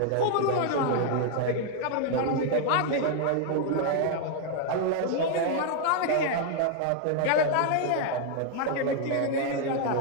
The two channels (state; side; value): different; both; correlation 0.00